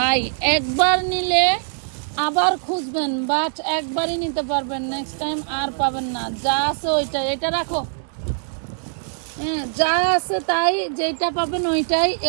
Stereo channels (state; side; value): silent; left; digital silence